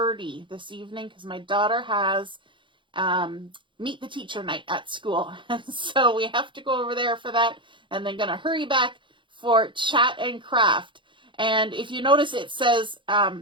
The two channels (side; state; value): left; late; 0.24 ms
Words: this evening because my daughter has meet the teacher night at school. So we have to go over there for that, and then gonna hurry back for chat and craft. And if you notice, it says